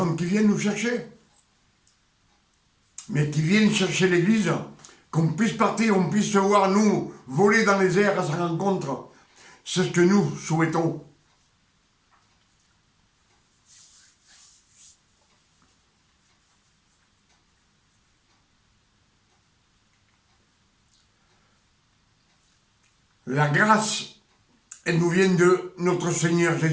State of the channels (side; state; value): both; identical; correlation 1.00